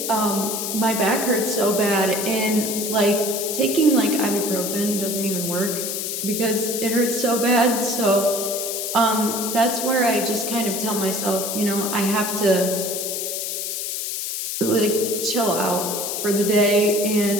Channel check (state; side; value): noise; left; hiss, 3 dB below the sound